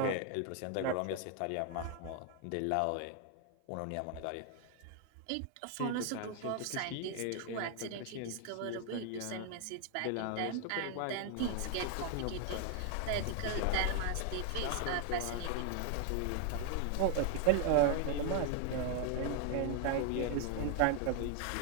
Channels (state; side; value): different; both; correlation 0.01